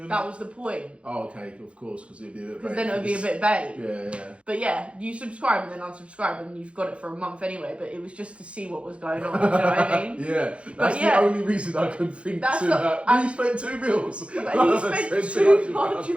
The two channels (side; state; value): left; late; 0.060 ms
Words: That was the point. Oh, okay, of course, because it'd be a bit. Because then it would be a bit vague. Yeah. But yeah, you subscribe and then unsubscribe, and you've got it for a month anyway. But it was just to see what was going on. Do you know what I mean? Yeah, that's the only reason I can think to that. You spent 2 meals. But he spent